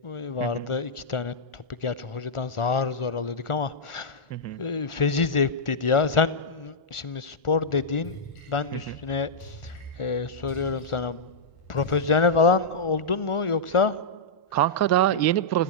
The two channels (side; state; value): right; late; 1.4 ms